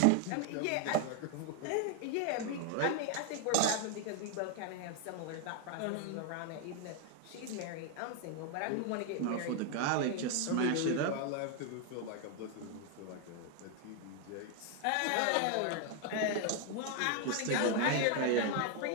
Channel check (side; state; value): both; different; correlation 0.00